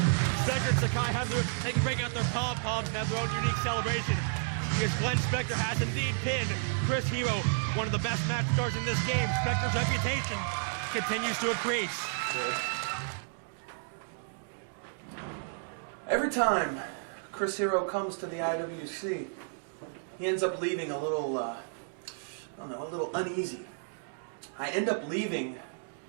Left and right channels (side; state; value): left; silent; digital silence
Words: Spectre and Sakai they can break out their pom-poms and have their own unique celebration, because Glenn Spectre has indeed pinned Chris Hero, one of the best match stars in this game. Spectre's reputation continues to increase. Every time Chris Hero comes to the IWC, he ends up leaving a little, a little uneasy. I end up leaving,